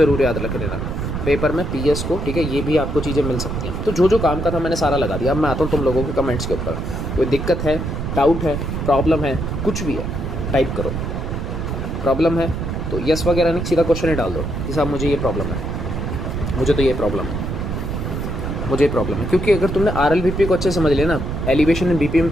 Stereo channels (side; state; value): right; noise; rumble, 4 dB below the sound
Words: याद रख लेना पेपर में, PS को, ठीक है, ये भी आपको चीज़ें मिल सकती हैं। तो जो जो काम का था मैंने सारा लगा दिया। अब मैं आता हूँ तुम लोगों के कमेंट्स के ऊपर, कोई दिक्कत है, डाउट है, प्रॉब्लम है, कुछ भी है, टाइप करो। प्रॉब्लम है तो यस वगैरह नहीं, सीधा क्वेश्चन ही डाल दो कि साहब मुझे ये प्रॉब्लम है, मुझे तो ये प्रॉब्लम है, मुझे ये प्रॉब्लम है। क्योंकि अगर तुमने RLBP को अच्छे समझ लिया ना, एलिवेशन में BP में